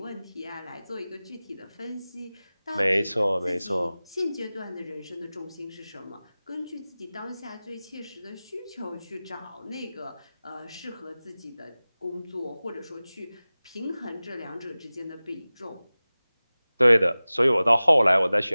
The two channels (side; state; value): both; inverted; correlation -0.98